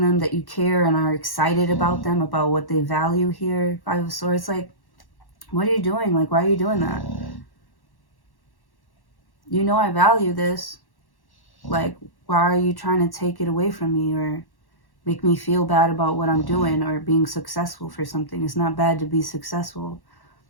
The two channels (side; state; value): right; late; 1.1 ms